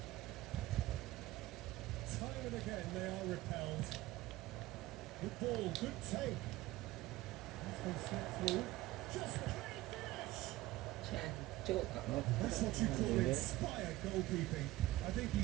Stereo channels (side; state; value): left; quieter; 17.3 dB